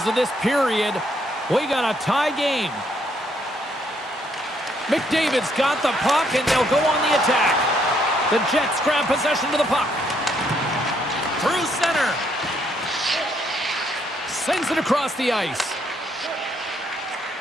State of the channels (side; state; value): both; normal; correlation 0.71